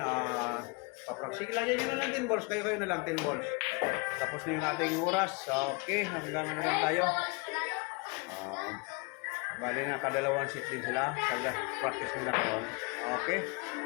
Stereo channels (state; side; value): quieter; right; 28.6 dB